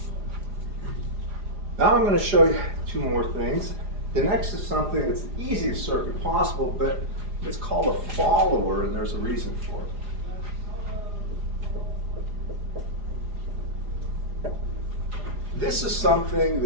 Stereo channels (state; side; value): late; left; 4.9 ms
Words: Now I'm going to show you two more things. The next is something that's the easiest circuit possible, but it's called a follower, and there's a reason for it. This is something